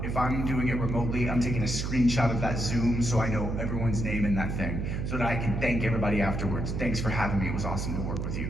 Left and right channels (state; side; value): noise; right; hum, 2 dB below the sound